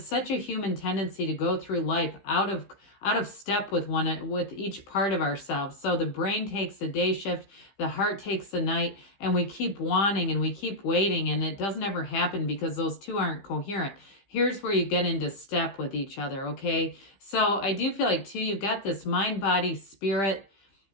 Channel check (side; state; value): right; late; 15 ms